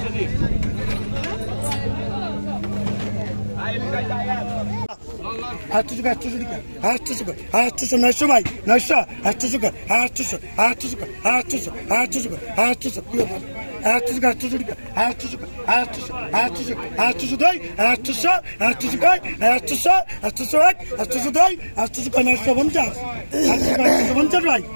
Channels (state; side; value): inverted; both; correlation -1.00